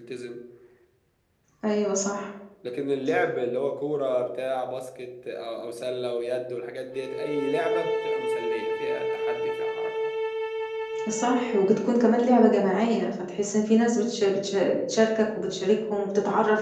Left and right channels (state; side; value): identical; both; correlation 1.00